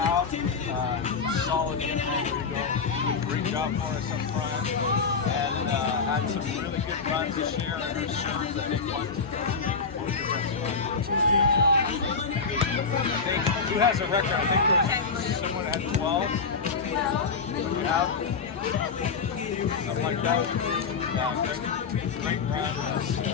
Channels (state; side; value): quieter; right; 5.1 dB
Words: Solid in there. There we go. Great job for us up front. And had some really good runs this year in her serves. I think who has a record? I think there's someone that had 12. Yeah. Something like that. Great run on